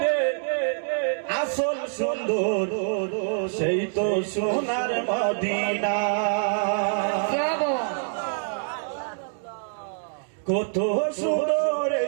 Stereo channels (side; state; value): left; silent; digital silence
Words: রে আসল সুন্দর সেই তো সোনার মদিনা। কত সুন্দর